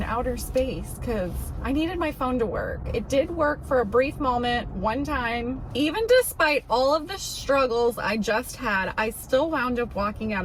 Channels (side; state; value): both; identical; correlation 1.00